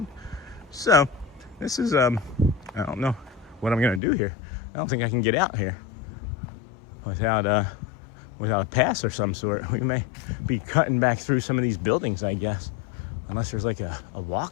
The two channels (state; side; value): drops out; right; at 4.0 s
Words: So, this is, I don't know what I'm going to do here. I don't think I can get out here without a pass or some sort. We may be cutting back through some of these buildings, I guess. Unless there's like a